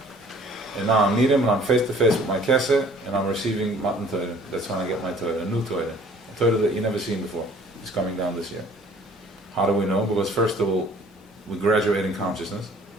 And now I'm Nirim, and I'm face to face with my Keseh, and I'm receiving Matan Torah. That's when I get my Torah, a new Torah. A Torah that you never seen before. It's coming down this year. How do we know? Because first of all, we graduate in consciousness.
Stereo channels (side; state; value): both; normal; correlation 0.54